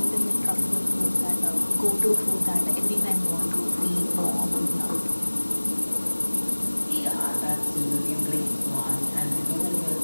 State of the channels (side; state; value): both; inverted; correlation -1.00